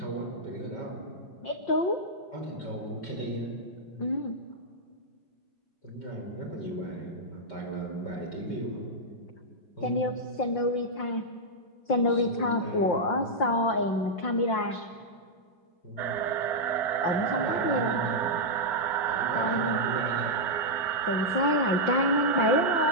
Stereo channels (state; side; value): late; right; 5.7 ms